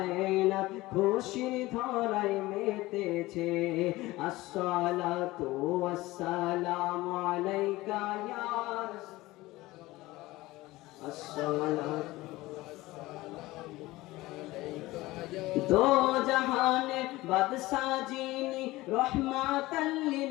খুশির ধারায় মেতেছে। আসসালাতু ওয়াসসালামু আলাইকা ইয়া রাসূলুল্লাহ, আসসালাতু दो जहाने बादशाह जीनी रहमतल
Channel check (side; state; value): right; quieter; 19.0 dB